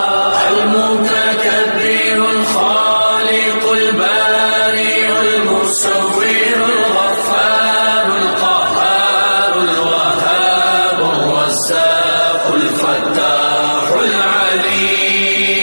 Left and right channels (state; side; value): inverted; both; correlation -1.00